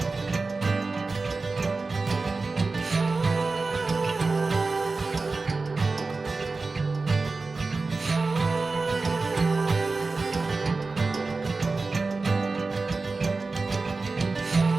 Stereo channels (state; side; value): quieter; left; 3.8 dB